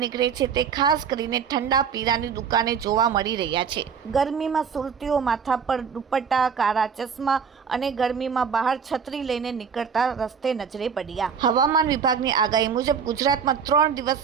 નીકળે છે તે ખાસ કરીને ઠંડા પીણાની દુકાને જોવા મળી રહ્યા છે। ગરમીમાં સુરતીઓ માથા પર દુપટ્ટા, કાળા ચશ્મા અને ગરમીમાં બહાર છત્રી લઈને નીકળતા રસ્તે નજરે પડ્યા। હવામાન વિભાગની આગાહી મુજબ ગુજરાતમાં 3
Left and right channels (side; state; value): left; quieter; 6.7 dB